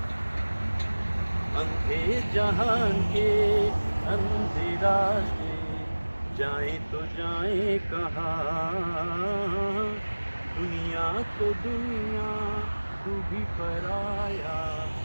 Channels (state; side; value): inverted; both; correlation -1.00